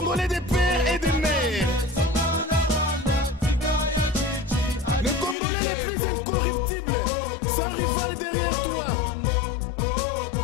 Congolais des pères et des mères. Les Congolais les plus incorruptibles, sans rival derrière toi.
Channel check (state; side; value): drops out; right; at 5.4 s